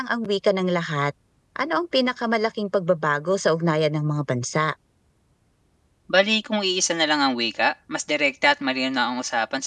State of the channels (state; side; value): identical; both; correlation 1.00